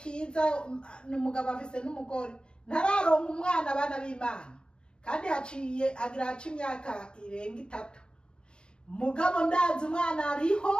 n'umugabo afise n'umugore, ntararonka umwana. Bana b'Imana, kandi agira imyaka irenga 3. Mugabo ndazi umwana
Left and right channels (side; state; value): right; late; 0.050 ms